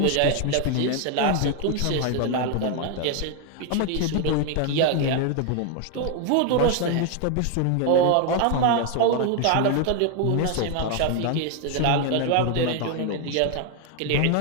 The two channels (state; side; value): different; both; correlation 0.01